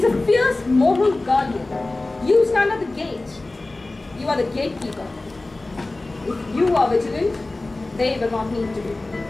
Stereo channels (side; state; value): right; quieter; 3.0 dB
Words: a fierce moral guardian. You stand at the gate. You are the gatekeeper. If you are vigilant, they will not need to be.